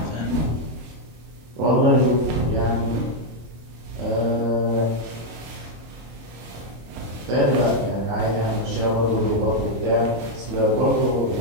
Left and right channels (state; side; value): late; left; 26 ms